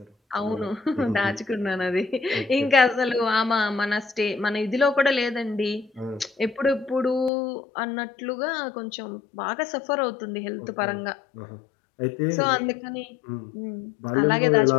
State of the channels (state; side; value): drops out; right; at 7.3 s